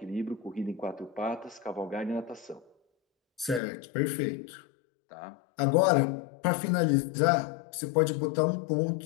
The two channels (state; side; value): drops out; right; at 3.6 s